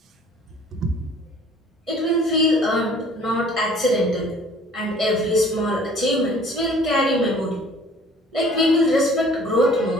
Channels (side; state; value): both; normal; correlation 0.52